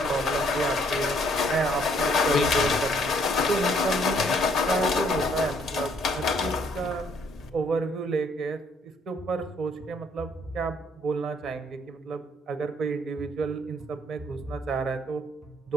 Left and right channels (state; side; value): normal; both; correlation 0.65